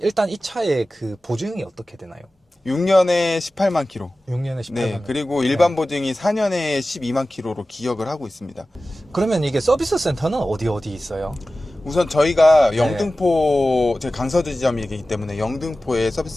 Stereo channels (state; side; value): normal; both; correlation 0.96